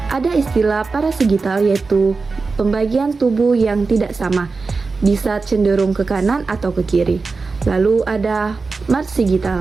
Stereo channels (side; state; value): left; quieter; 4.2 dB